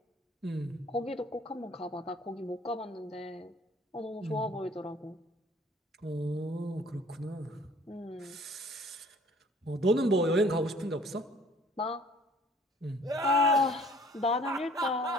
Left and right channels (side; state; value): both; normal; correlation 0.55